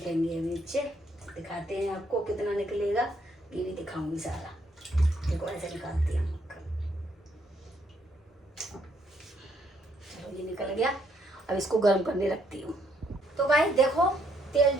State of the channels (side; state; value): both; normal; correlation 0.71